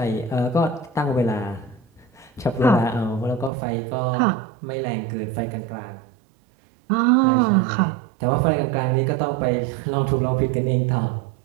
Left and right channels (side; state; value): left; drops out; at 3.5 s